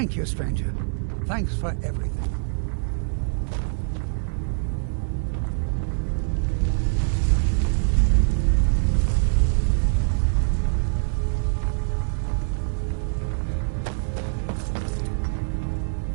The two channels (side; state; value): left; silent; 59 dB below the other